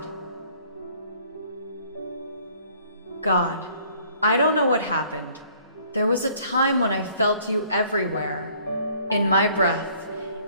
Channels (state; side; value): inverted; both; correlation -0.58